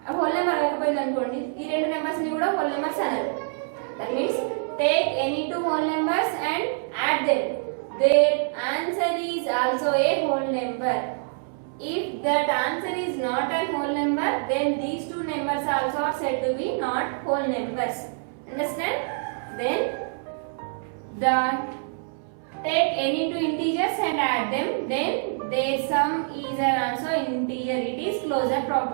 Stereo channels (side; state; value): left; silent; 61 dB below the other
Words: whole number అవ్వకపోయింది అనుకోండి, ఈ రెండు numbers ని కూడా whole numbers అనాలి. That means take any two whole numbers and add them. There answer is also a whole number. If that answer is not a whole number, then these two numbers also are said to be not whole numbers. Understand? Then take any two integers and add them. Then their sum is also integer. It is closure